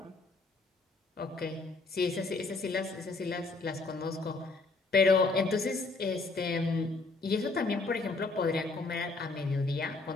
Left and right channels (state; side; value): quieter; right; 3.6 dB